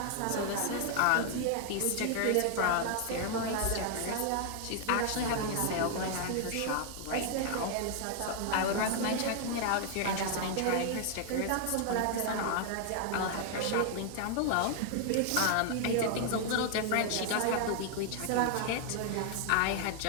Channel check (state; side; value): different; both; correlation 0.00